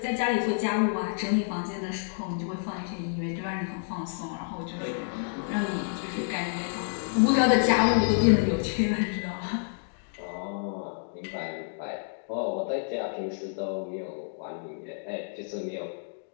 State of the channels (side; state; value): right; silent; digital silence